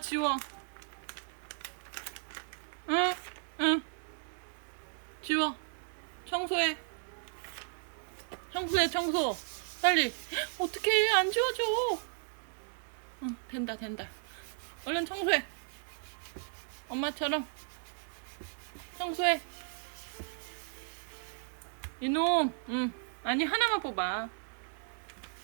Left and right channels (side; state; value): left; silent; 54 dB below the other